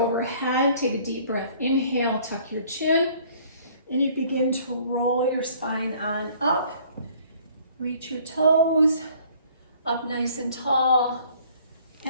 take a deep breath, inhale, tuck your chin, and you begin to roll your spine on up, reach your toes, up nice and tall,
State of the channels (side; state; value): both; inverted; correlation -0.56